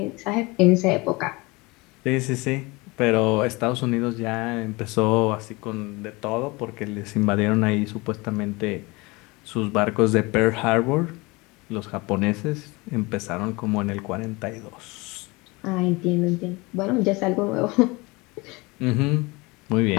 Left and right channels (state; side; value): quieter; right; 24.5 dB